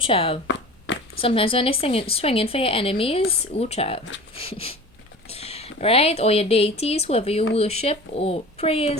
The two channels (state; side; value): normal; both; correlation 0.37